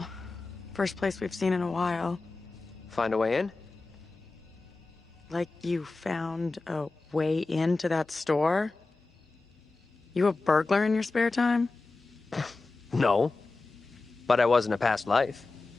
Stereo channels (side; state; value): right; quieter; 3.6 dB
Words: first place we've seen in a while. Find a way in? Like you found a way into that store? You a burglar in your spare time? No. But I was in a past life.